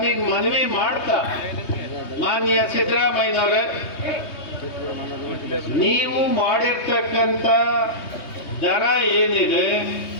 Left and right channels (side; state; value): right; late; 3.2 ms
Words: ಮನವಿ ಮಾಡ್ತಾ, ಮಾನ್ಯ ಸಿದ್ದರಾಮಯ್ಯನವರೇ, ನೀವು ಮಾಡಿರ್ತಕ್ಕಂಥ ದರ ಏನಿದೆ